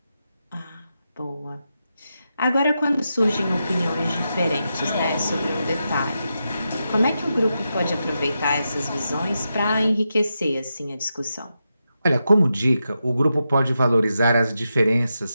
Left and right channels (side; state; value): both; inverted; correlation -0.87